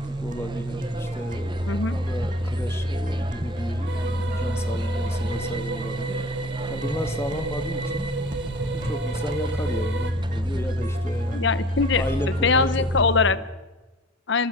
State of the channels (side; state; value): both; normal; correlation 0.44